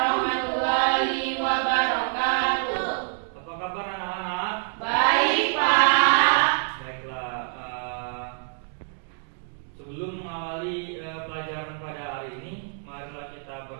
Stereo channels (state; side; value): silent; left; 59 dB below the other